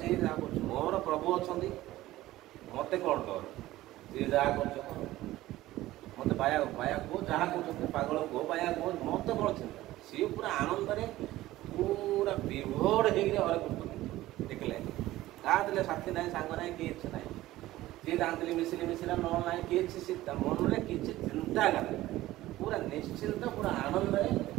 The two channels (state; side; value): quieter; left; 16.2 dB